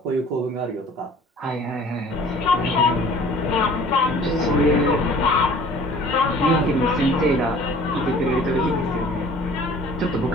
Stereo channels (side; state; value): both; normal; correlation 0.49